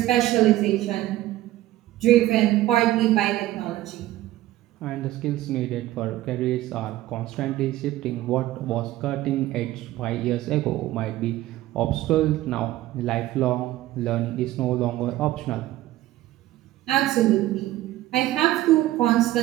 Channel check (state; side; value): quieter; left; 15.5 dB